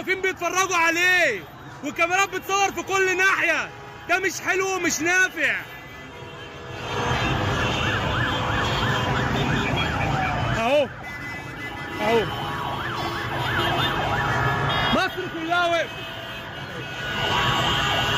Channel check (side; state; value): both; identical; correlation 1.00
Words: بيتفرجوا عليه، والكاميرات بتصور في كل ناحيه. ده مش حلو ومش نافع. اهو اهو مصر كلها وقفت